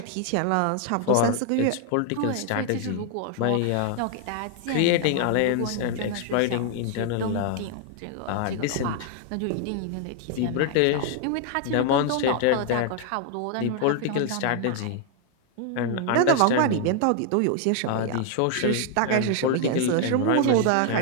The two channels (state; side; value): different; both; correlation 0.00